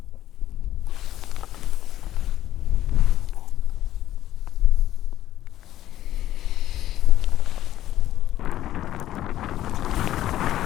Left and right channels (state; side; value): quieter; right; 13.1 dB